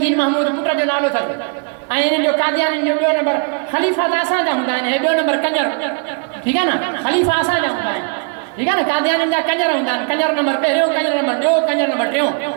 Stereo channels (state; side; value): quieter; left; 39.2 dB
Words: महमूद पुट जो नालो अथसि। ऐं इन्हनि जो कादियाननि जो ॿियो नंबर ख़लीफ़ा त असांजा हूंदा आहिनि, ॿियो नंबर कंजर, ठीकु आहे न? ख़लीफ़ा असांजा हूंदा आहिनि, ठीकु आहे न? कादियाननि जा कंजर हूंदा आहिनि। कंजर नंबर पहिरियों, कंजर नंबर ॿियो, कंजर नंबर टियों,